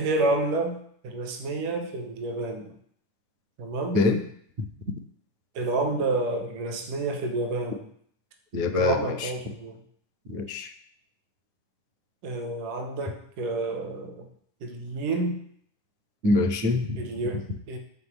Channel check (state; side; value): late; left; 9.4 ms